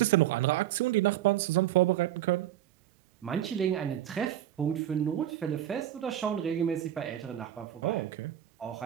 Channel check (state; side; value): quieter; left; 12.0 dB